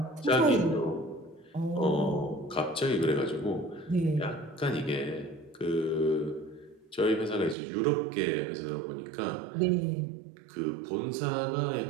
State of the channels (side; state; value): left; drops out; at 7.6 s